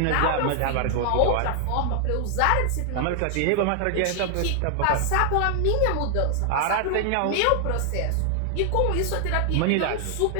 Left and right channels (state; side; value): different; both; correlation 0.00